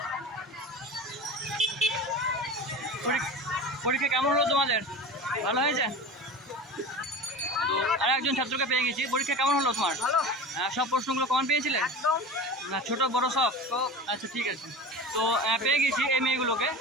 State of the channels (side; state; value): both; normal; correlation 0.32